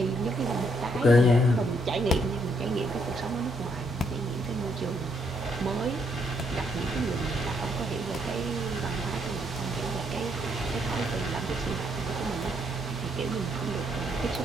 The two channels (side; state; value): both; normal; correlation 0.73